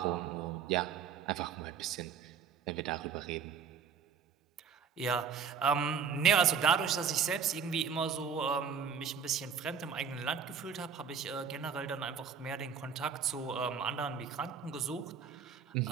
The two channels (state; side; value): quieter; left; 6.6 dB